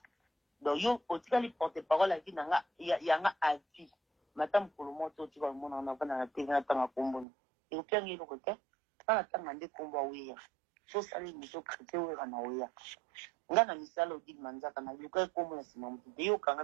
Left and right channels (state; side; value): drops out; left; at 7.2 s